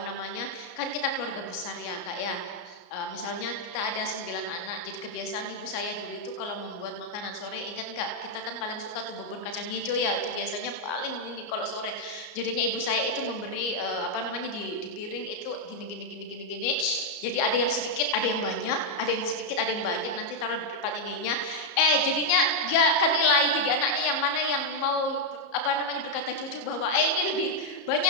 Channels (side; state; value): right; late; 34 ms